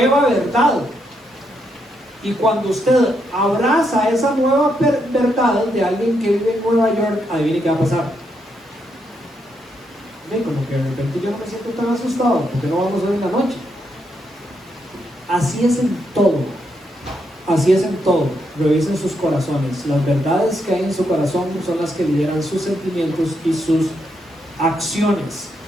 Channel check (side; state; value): both; normal; correlation 0.79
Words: verdad. Y cuando usted abraza esa nueva verdad de alguien que vive en Nueva York, adivine qué va a pasar. Ven, como que de repente yo no me siento tan asustado, porque no vamos a ver en la noche. Así es en todo. Así es en todo. Revisen sus corazones. Las verdades que hay en su corazón son las que lideran sus sentimientos y sus acciones.